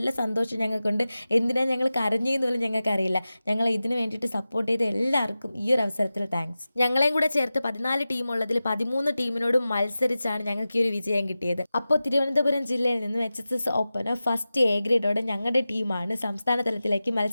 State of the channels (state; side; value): inverted; both; correlation -0.95